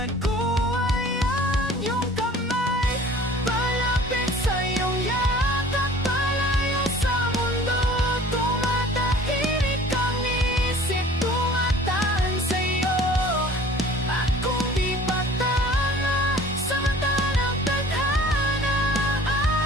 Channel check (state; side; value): normal; both; correlation 0.48